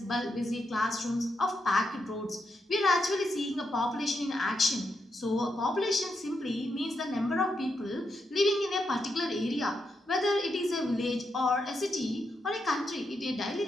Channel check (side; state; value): both; normal; correlation 0.83